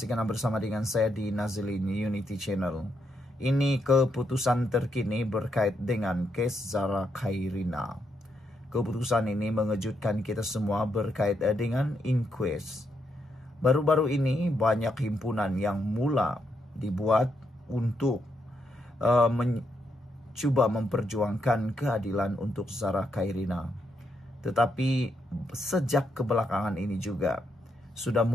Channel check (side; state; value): both; normal; correlation 0.79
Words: karena bersama dengan saya di Nazilin Unity Channel. Ini keputusan terkini berkait dengan kes Zara Khairina. Keputusan ini mengejutkan kita semua berkait dengan inquest. Baru-baru ini banyak himpunan yang mula dibuat untuk mencoba memperjuangkan keadilan untuk Zara Khairina. Tetapi sejak kebelakangan ini juga sudah